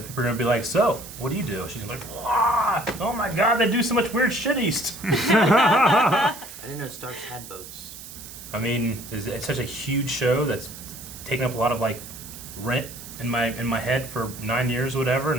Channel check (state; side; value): noise; right; hiss, 14 dB below the sound